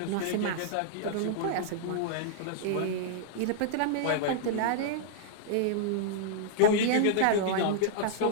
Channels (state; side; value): different; both; correlation -0.01